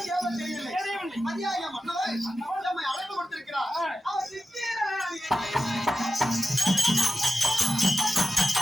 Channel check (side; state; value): both; normal; correlation 0.92